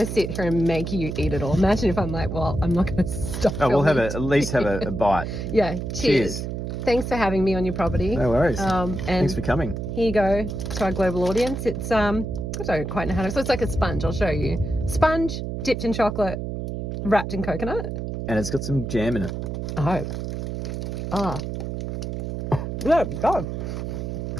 sit here and make you eat it all. Imagine if I'm like, well, I'm not going to stop. Oh, we'll at least have a bite. Yeah, cheers. Thanks for having me on your property. No worries. And thanks for coming. Here you go to our global audience. It's I don't quite know how to. So it's like a sponge. I'll show you. Sponge dipped in chocolate, wrapped in coconut. And it's got some jam in it. Oh. Yeah, God.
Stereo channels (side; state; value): right; noise; hum, 5 dB below the sound